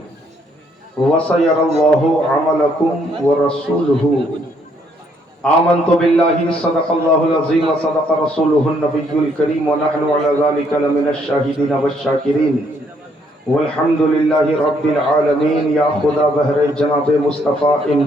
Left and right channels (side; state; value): both; normal; correlation 0.69